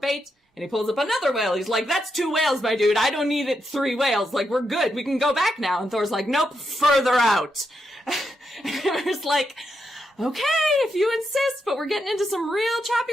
and he pulls up another whale. He's like, that's 2 whales, my dude. I don't need it 3 whales. Like, we're good. We can go back now. And Thor's like, nope, further out. And Hymir's like, okay, if you insist, but we're getting into some real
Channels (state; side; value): normal; both; correlation 0.83